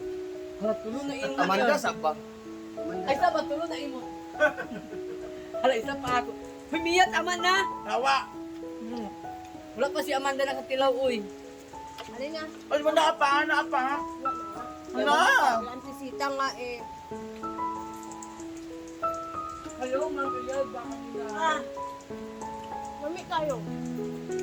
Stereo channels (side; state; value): both; identical; correlation 1.00